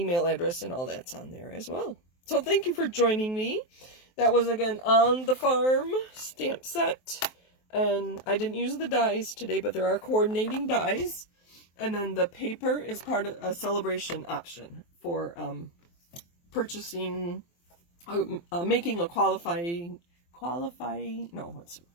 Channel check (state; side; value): late; right; 23 ms